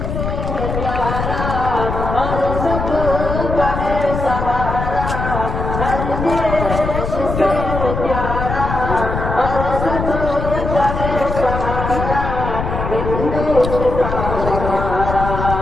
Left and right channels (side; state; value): left; noise; rumble, 4 dB below the sound